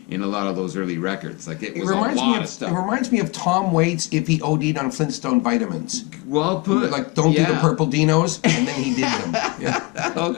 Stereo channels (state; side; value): quieter; right; 26.0 dB